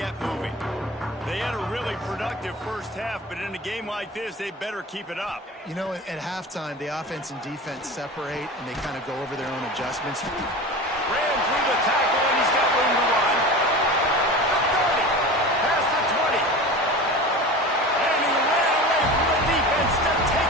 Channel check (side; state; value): both; normal; correlation 0.33